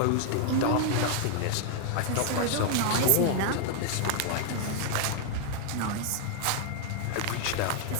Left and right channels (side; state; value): both; different; correlation 0.00